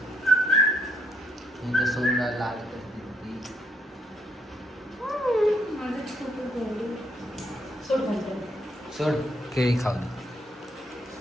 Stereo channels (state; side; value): normal; both; correlation 0.72